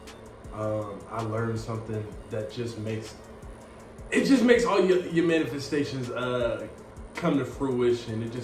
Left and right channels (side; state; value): both; identical; correlation 1.00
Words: I learned something that just makes all your manifestations come to fruition. It